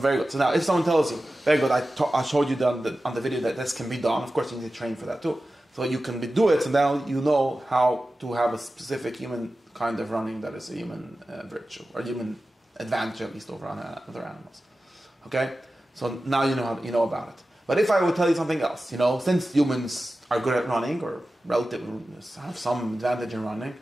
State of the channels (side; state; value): both; normal; correlation 0.94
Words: good. So now, if someone tells you, very good, I showed you on the video that this can be done. Of course, you need to train for that too. So you can do it, so now you know how to have a specific human kind of running that is a human virtue, or human advantage at least over other animals. Okay? So now you know about it. But if I would tell you something else, since humans are good at running, or relative have some advantage in running,